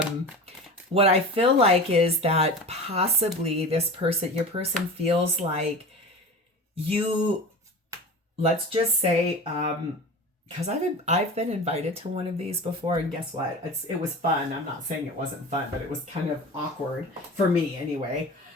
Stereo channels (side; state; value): both; normal; correlation 0.32